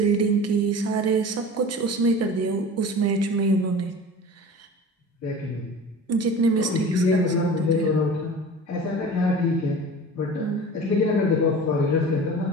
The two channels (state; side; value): normal; both; correlation 0.37